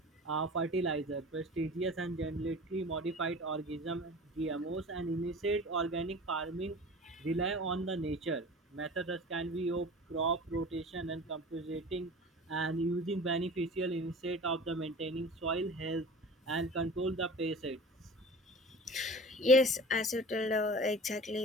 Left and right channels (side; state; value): both; normal; correlation 0.39